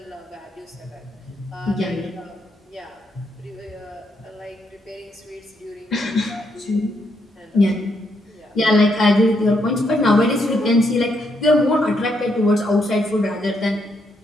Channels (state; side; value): normal; both; correlation 0.77